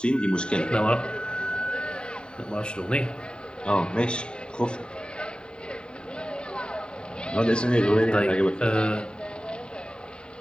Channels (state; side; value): late; right; 0.049 ms